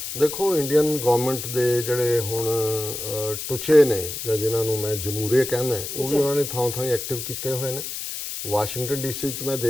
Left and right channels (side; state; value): left; noise; hiss, 6 dB below the sound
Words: ਦੇਖੋ ਇੰਡੀਅਨ ਗਵਰਨਮੈਂਟ ਦੇ ਜਿਹੜੇ ਹੁਣ ਟੁਚੇ ਨੇ ਜਾਂ ਜਿਨ੍ਹਾਂ ਨੂੰ ਮੈਂ ਜਮਹੂਰੀਆ ਕਹਿੰਦਾ, ਉਹ ਵੀ ਉਹਨਾਂ ਨੇ ਥਾਂ ਥਾਂ ਐਕਟਿਵ ਕੀਤੇ ਹੋਏ ਨੇ। ਵਾਸ਼ਿੰਗਟਨ ਡੀਸੀ 'ਚ ਮੈਂ